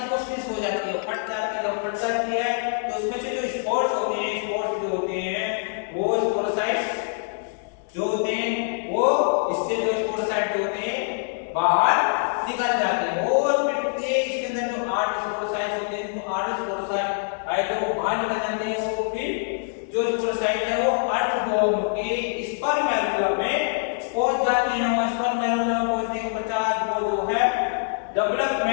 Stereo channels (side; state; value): right; silent; digital silence